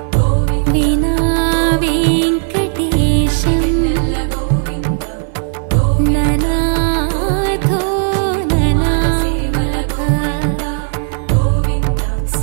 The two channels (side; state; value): left; silent; 64 dB below the other